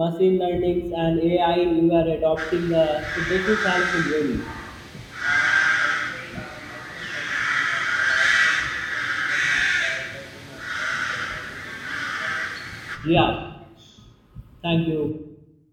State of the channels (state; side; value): identical; both; correlation 1.00